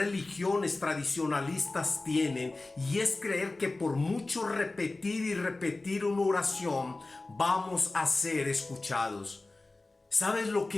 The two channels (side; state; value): right; quieter; 3.2 dB